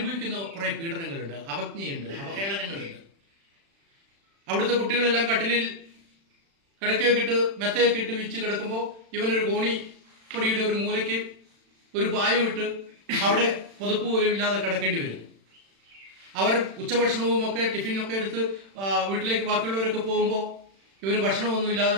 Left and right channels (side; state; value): left; late; 36 ms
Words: കുറേ പീഡനങ്ങളുണ്ട്, അവജ്ഞയുണ്ട്, അവഹേളനങ്ങളുണ്ട്. അവിടുത്തെ കുട്ടികളെല്ലാം കട്ടിലിൽ കിടക്കയൊക്കെ ഇട്ട് മെത്തയൊക്കെ ഇട്ട് വിരിച്ച് കിടക്കുമ്പോൾ ഇവനൊരു കോണിപ്പൊടിയുടെ ഒരു മൂലയ്ക്ക് ഒരു പായം ഇട്ട് അവിടെ പുതപ്പ് പോലും ഇല്ലാതെ കിടക്കേണ്ടി വരും. അവർ ഉച്ചഭക്ഷണവും ഒക്കെ ടിഫിനൊക്കെ എടുത്ത് വീട്ടിലേക്ക് ബാക്കിയുള്ളവരൊക്കെ പോകുമ്പോൾ ഇവന് ഭക്ഷണമൊന്നുമില്ലാതെ